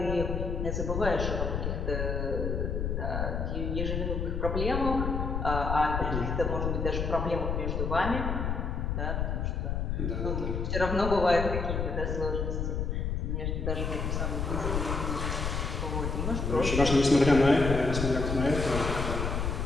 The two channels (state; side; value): noise; left; rumble, 1 dB below the sound